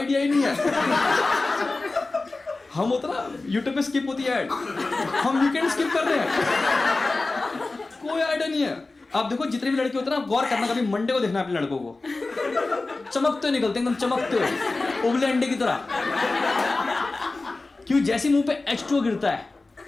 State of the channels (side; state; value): right; quieter; 3.4 dB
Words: ही नहीं है। हम होता ना यूट्यूब पे स्किप होती है ऐड, हम वीकेंड स्किप कर रहे हैं। कोई आइडिया नहीं है। आप देखो जितने भी लड़के होते हैं ना, गौर करना, कभी मंडे को देखना अपने लड़कों को, चमकते निकलते एकदम चमकते उबले अंडे की तरह। क्यों? जैसे मुंह पे H2O गिरता है